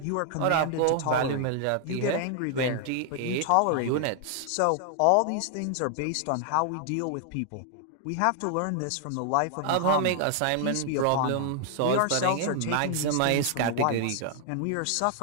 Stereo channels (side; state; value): both; different; correlation 0.00